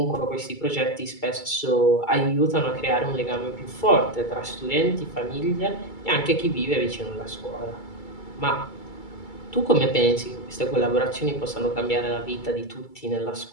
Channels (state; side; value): late; right; 2.3 ms